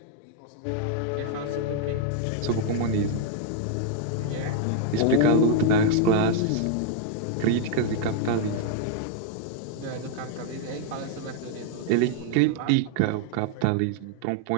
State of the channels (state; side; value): different; both; correlation 0.00